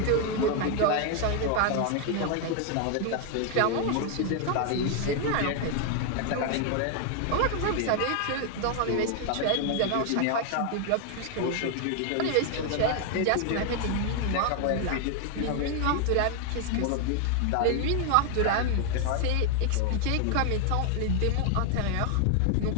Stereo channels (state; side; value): different; both; correlation 0.00